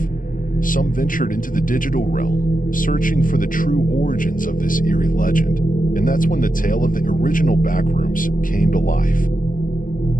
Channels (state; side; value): late; right; 0.39 ms